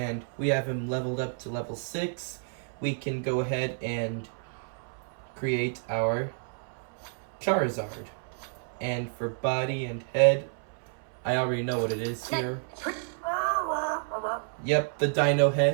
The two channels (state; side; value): silent; left; 58 dB below the other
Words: we have him leveled up to level 6, we can go ahead and create our Charizard. And for body and head, I already know what it is here. Yep, the dino